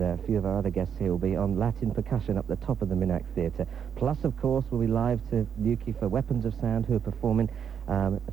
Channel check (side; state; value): left; quieter; 7.8 dB